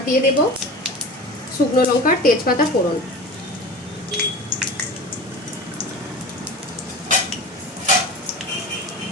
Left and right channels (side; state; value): both; normal; correlation 0.33